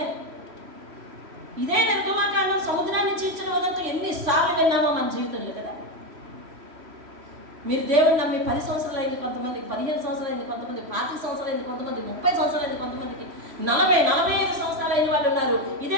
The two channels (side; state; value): left; late; 3.1 ms